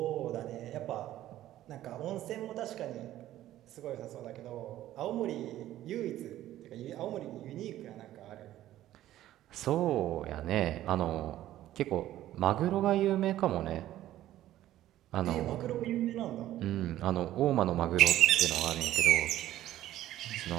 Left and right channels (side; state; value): left; quieter; 13.7 dB